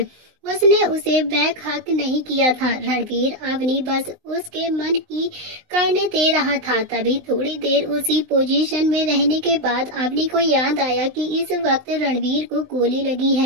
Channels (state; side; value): late; left; 19 ms